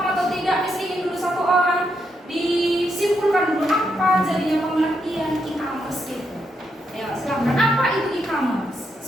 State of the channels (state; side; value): normal; both; correlation 0.80